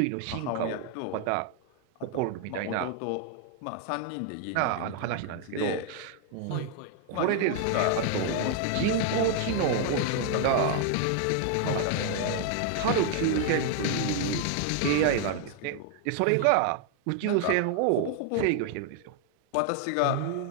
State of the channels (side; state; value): both; different; correlation 0.00